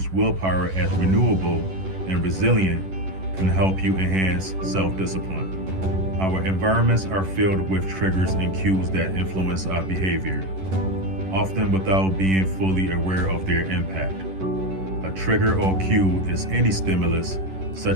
willpower as renewable and resilient can help you enhance self-discipline. Our environments are filled with triggers and cues that influence our behavior, often without being fully aware of their impact. A trigger or cue is any stimulus,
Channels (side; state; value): left; late; 11 ms